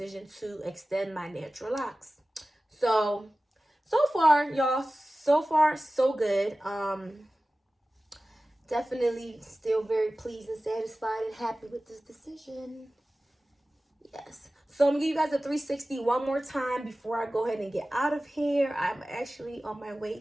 to extend my natural locks. So far, y'all, so good. Definitely still very pleased and satisfied and happy with this decision. Yes. So I'm gonna give you guys a 360 one more time before I go ahead and get out of here. I'm actually on my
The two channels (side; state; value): both; normal; correlation 0.96